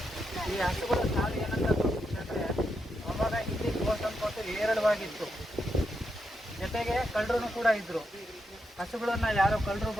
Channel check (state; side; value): normal; both; correlation 0.83